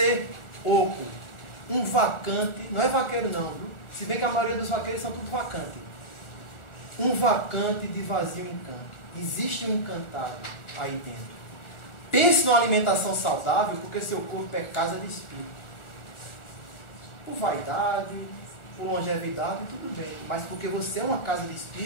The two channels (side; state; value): right; late; 1.4 ms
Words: oco, um vacante. Não é vaqueiro não, viu? Se bem que a maioria dos vaqueiros são tudo vacante. Um vacante de vazio encanto. Existe um encantado aí dentro. Pense numa alimentação saudável, porque seu corpo é casa de espírito. Por vaidade, por longevidade, tudo bem. Mas porque você é uma casa de